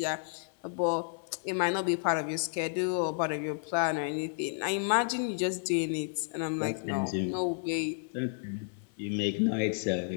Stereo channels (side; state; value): right; silent; 57 dB below the other